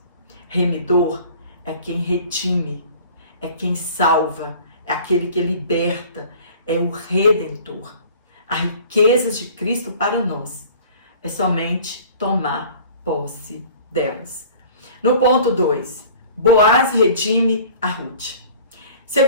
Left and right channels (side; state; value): both; inverted; correlation -0.46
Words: Remidor é quem redime, é quem salva, é aquele que liberta, é o Redentor. As riquezas de Cristo para nós é somente tomar posse delas. No ponto 2, Boaz redime a Ruth.